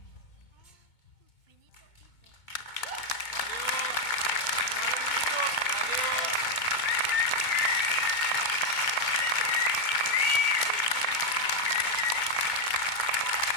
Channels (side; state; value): right; late; 2.2 ms